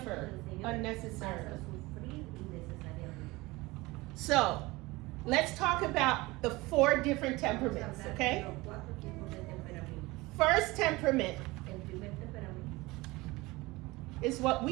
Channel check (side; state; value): left; quieter; 21.6 dB